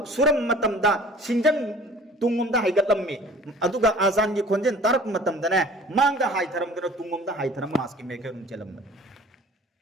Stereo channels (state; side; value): normal; both; correlation 0.48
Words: सुरम मतमदा सिंजन तुंगमदा हाइगतलम्मी अदुगा आजान की खोंजेन तारक मतमदने मांगदा हाइथरम दनो तुंगमदा हाइथरम मास की मेकरम चलम